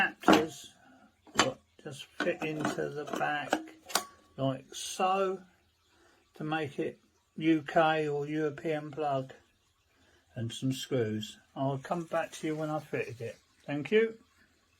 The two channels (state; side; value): identical; both; correlation 1.00